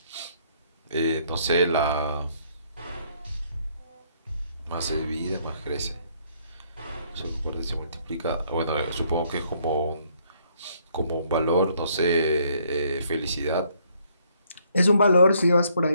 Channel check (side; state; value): both; inverted; correlation -0.67